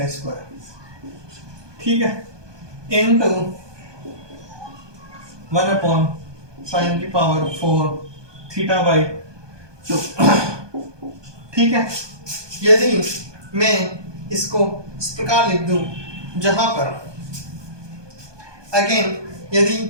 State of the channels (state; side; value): late; left; 1.2 ms